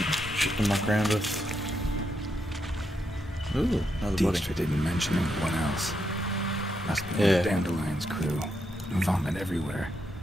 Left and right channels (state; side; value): normal; both; correlation 0.81